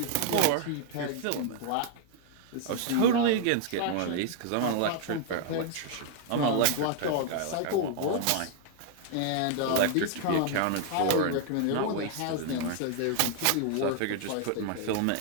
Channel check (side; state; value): both; different; correlation 0.00